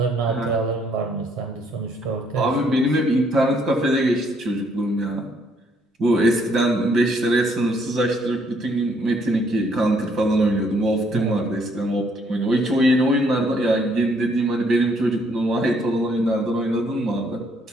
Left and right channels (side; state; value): both; normal; correlation 0.68